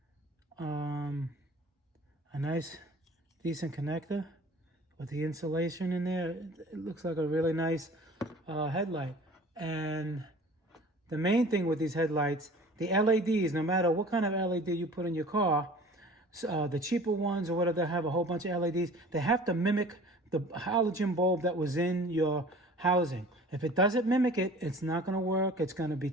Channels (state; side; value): normal; both; correlation 0.45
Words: A nice, decent connector with the insulation in there. It looks like a really nice headlight. And the main thing with these headlights, the LEDs, no matter what kind of LED you put in your car, the cheaper ones or whatever, they have a whole bunch of LEDs. They have to mimic the halogen bulb that was in your housing. If it doesn't mimic it, it's not going to work. It's going to be